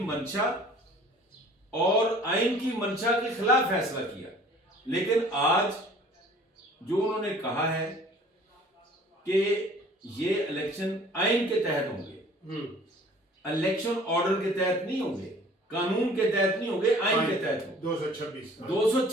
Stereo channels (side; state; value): both; normal; correlation 0.50